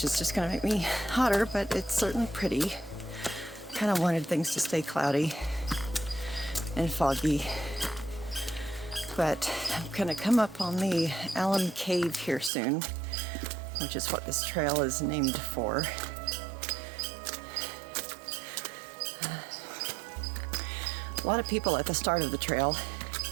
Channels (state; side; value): drops out; left; at 12.5 s